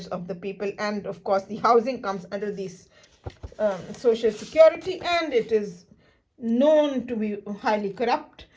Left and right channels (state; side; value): identical; both; correlation 1.00